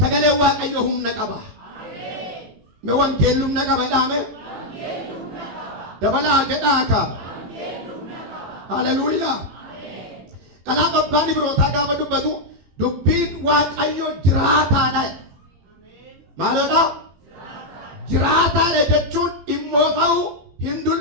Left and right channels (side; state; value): left; late; 18 ms